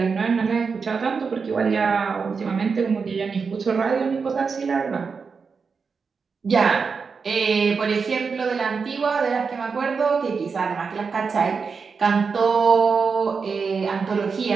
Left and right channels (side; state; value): left; quieter; 5.3 dB